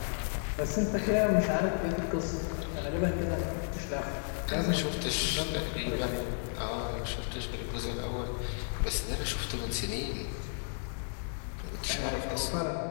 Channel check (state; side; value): silent; right; digital silence